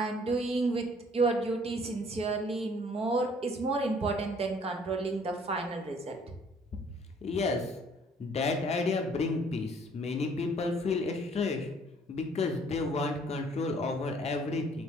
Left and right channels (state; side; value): normal; both; correlation 0.59